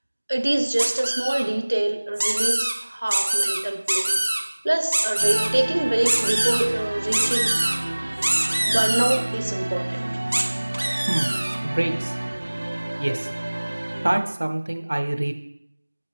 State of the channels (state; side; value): inverted; both; correlation -1.00